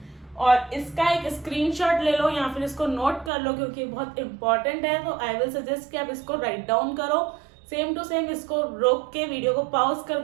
और इसका एक स्क्रीनशॉट ले लो या फिर इसको नोट कर लो, क्योंकि बहुत इंपॉर्टेंट है। तो आई विल सजेस्ट कि आप इसको राइट डाउन करो, सेम टू सेम इसको रोक के वीडियो को पॉज कर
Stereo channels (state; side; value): drops out; left; at 3.3 s